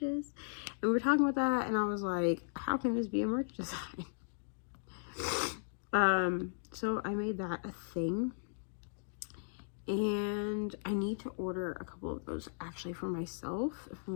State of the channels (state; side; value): silent; right; digital silence